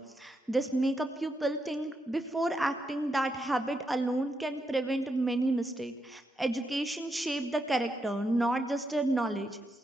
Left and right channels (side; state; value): both; normal; correlation 0.82